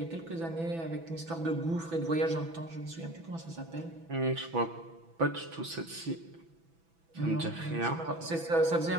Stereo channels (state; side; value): late; left; 6.0 ms